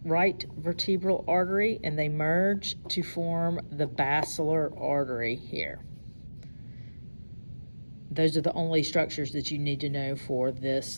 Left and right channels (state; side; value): inverted; both; correlation -1.00